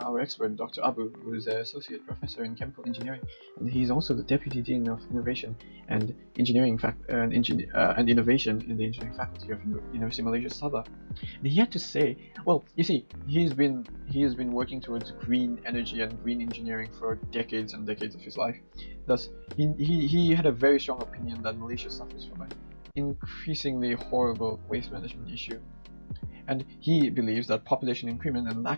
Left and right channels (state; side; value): inverted; both; correlation -1.00